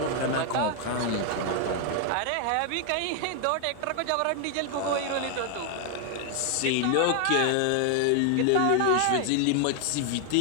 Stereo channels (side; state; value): both; different; correlation 0.00